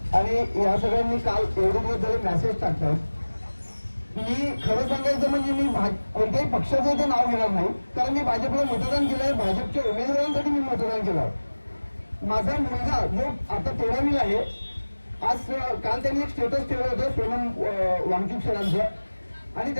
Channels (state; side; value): inverted; both; correlation -1.00